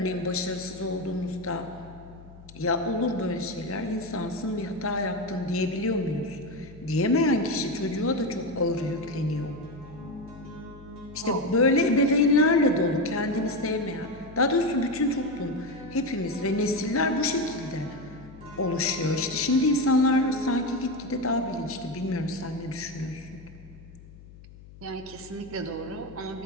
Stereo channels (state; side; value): noise; left; hum, 19 dB below the sound